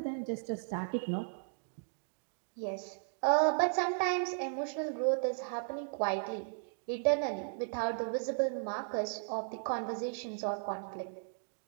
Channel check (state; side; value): silent; left; digital silence